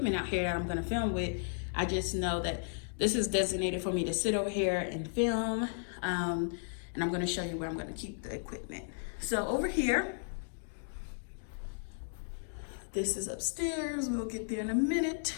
out here that I'm gonna film with. I just know that this is designated for me to sit over here and film, and I'm gonna show you where I'm gonna keep the equipment. So over here, this is upstairs. We'll get there in a minute.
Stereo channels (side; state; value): right; silent; digital silence